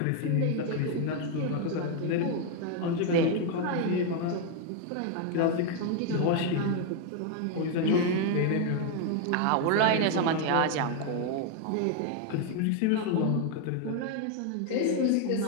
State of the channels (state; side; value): different; both; correlation 0.01